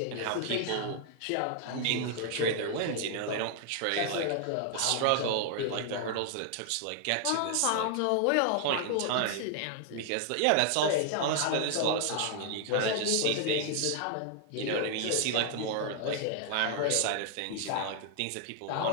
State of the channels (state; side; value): different; both; correlation 0.00